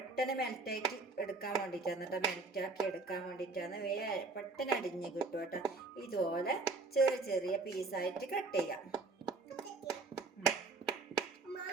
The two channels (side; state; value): left; quieter; 3.7 dB